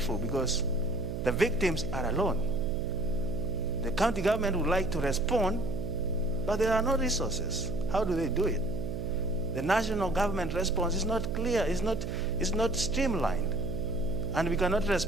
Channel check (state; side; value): noise; right; hum, 5 dB below the sound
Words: because the victims are alone. The county government would like to respond, but there are no resources. How do they do it? The national government response is not clear, it's not streamlined. And we cannot